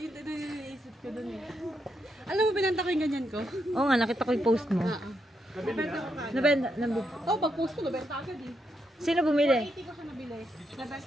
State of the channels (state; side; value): normal; both; correlation 0.81